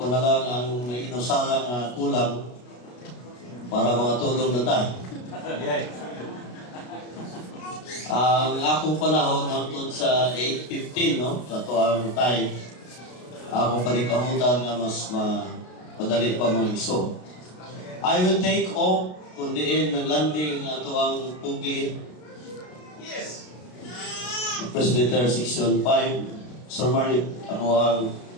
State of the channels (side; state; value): right; late; 33 ms